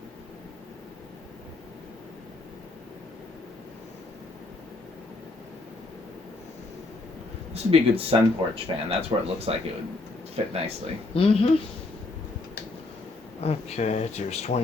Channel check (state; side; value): quieter; right; 3.1 dB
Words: This would be a good sun porch fan. That's where it looks like it would fit nicely. Mm-hmm. Okay, here's